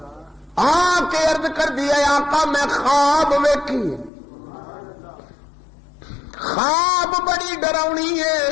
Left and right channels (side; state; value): right; drops out; at 4.1 s